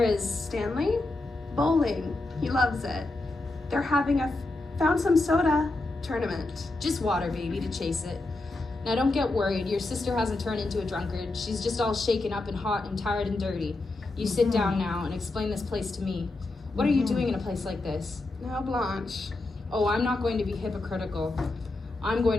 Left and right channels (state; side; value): quieter; right; 3.0 dB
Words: is... Stanley? Bowling. He loves it. They're having a found some soda tournament. Just water, baby, to chase it. Now don't get worried. Your sister hasn't turned into a drunkard. She's just all shaken up and hot and tired and dirty. You sit down now and explain this place to me. What are you doing in a place like this? Now, Blanche. Oh, I'm not going to be hypocritical. I'm